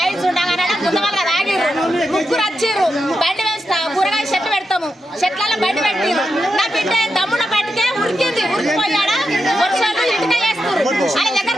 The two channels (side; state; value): both; normal; correlation 0.87